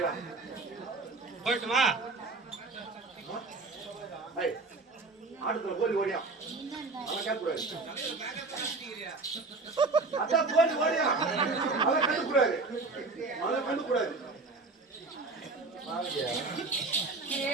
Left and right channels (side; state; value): left; quieter; 3.7 dB